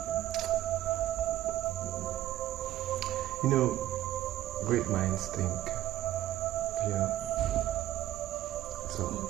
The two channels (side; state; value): left; quieter; 13.7 dB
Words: You know, great minds think. Yeah. So,